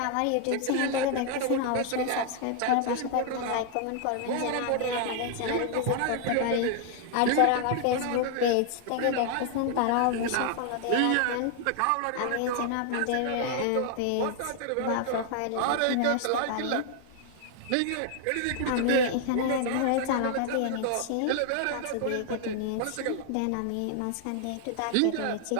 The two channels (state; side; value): different; both; correlation 0.00